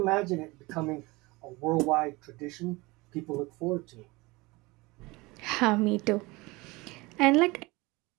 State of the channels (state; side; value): quieter; left; 23.1 dB